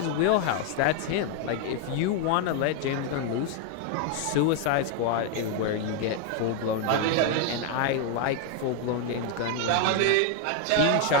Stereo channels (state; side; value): different; both; correlation 0.01